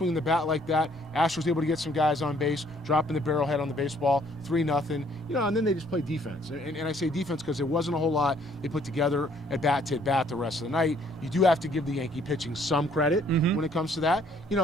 the bat like that. Astros able to get some guys on base, dropping the barrel head on the baseball, 3-0. You know, and then they just play defense. And I say defense because there wasn't a whole lot they put together at bat to bat the rest of the night. You do have to give the Yankee pitching some credit when it comes to that. You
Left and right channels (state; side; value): normal; both; correlation 0.63